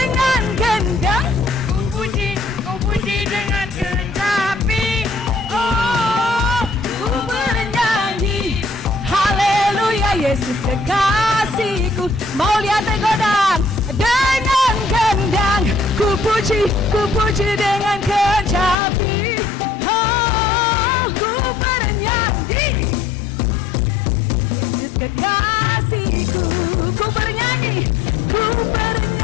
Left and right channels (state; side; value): drops out; right; at 18.8 s